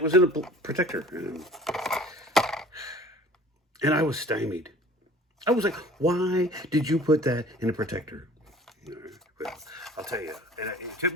was in a protector. And I was stymied. I was like, why did you put that in a protector? All right. Well, I'll tell you, it took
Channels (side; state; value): both; normal; correlation 0.47